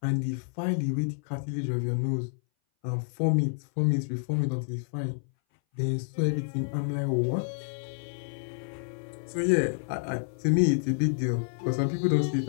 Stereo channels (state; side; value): silent; right; 59 dB below the other